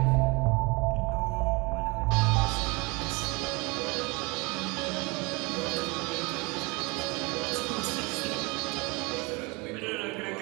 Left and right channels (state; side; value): quieter; left; 27.5 dB